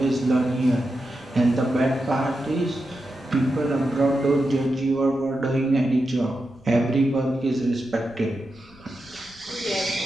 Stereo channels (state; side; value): noise; left; rumble, 26 dB below the sound